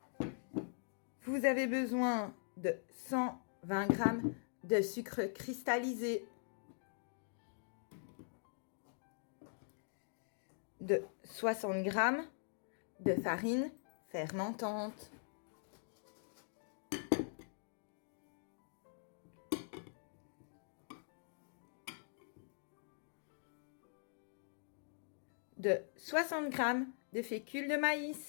Vous avez besoin de 120 g de sucre cristallisé, de 60 g de farine fermentante, de 60 g de fécule de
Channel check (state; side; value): silent; right; digital silence